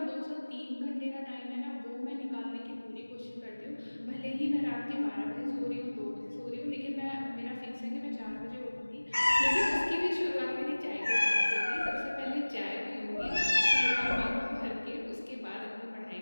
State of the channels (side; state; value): both; inverted; correlation -1.00